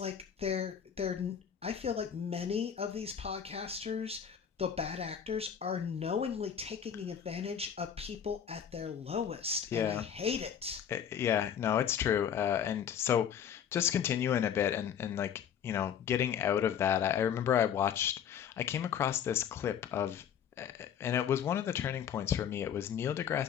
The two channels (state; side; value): quieter; right; 8.5 dB